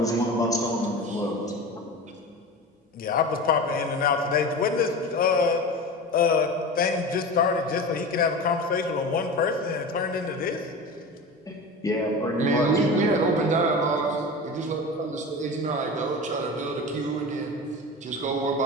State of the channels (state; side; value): normal; both; correlation 0.30